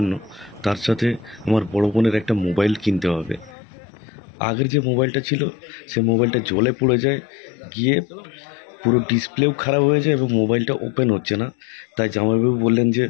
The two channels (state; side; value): drops out; right; at 3.6 s